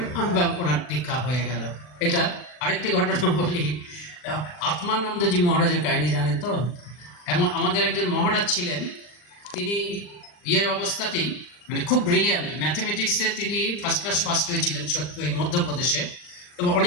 ওনার দীক্ষা হয়ে গেল। এটা আরেকটি ঘটনা বলি, আত্মানন্দজি মহারাজের কাহিনী জানেন তো? এমন আমাদের একজন মহারাজ ছিলেন, তিনি অবস্থাতেই মানে খুব ব্রিলিয়ান্ট, ম্যাথমেটিক্সে তিনি ফার্স্ট ক্লাস ফার্স্ট হয়েছিলেন ওই মধ্যপ্রদেশে, এবং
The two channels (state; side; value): late; right; 40 ms